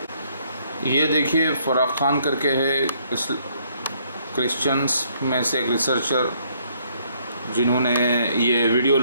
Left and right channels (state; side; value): inverted; both; correlation -0.67